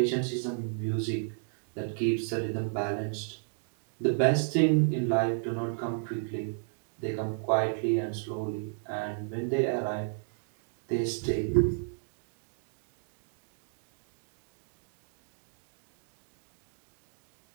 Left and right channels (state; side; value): silent; left; digital silence